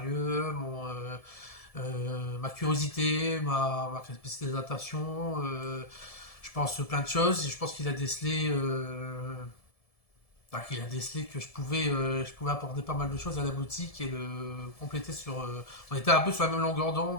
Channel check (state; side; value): late; right; 1.7 ms